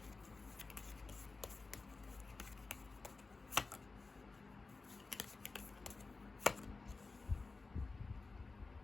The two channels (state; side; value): quieter; right; 3.8 dB